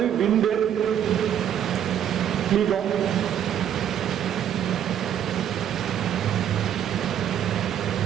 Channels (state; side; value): quieter; left; 9.8 dB